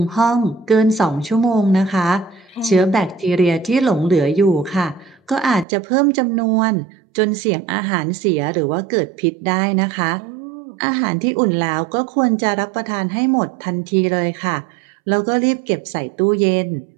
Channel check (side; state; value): left; drops out; at 5.7 s